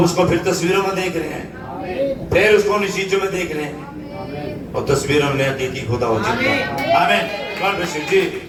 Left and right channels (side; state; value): both; identical; correlation 1.00